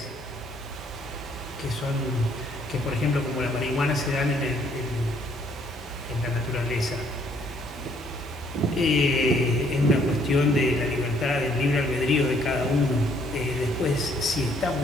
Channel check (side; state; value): both; normal; correlation 0.65